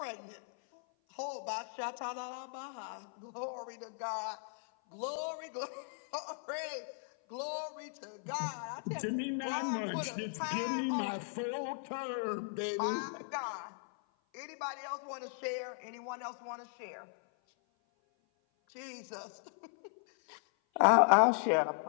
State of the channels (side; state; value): right; silent; 53 dB below the other